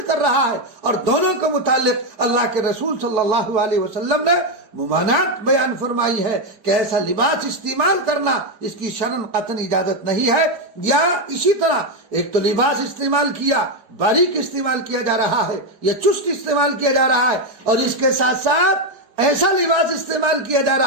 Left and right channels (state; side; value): late; left; 4.6 ms